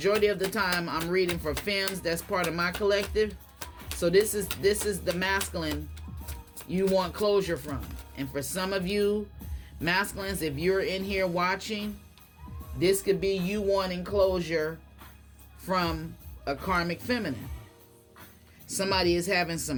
of the time I'm reading for femmes. That's part of my collective. So this is the masculine you want closure from. And for some of you masculines, if you're in here watching, this could be you wanting closure from a karmic feminine. Somebody is having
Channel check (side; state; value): both; identical; correlation 1.00